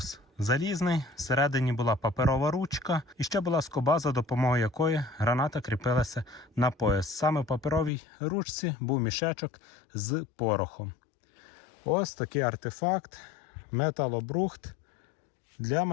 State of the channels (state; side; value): drops out; right; at 7.9 s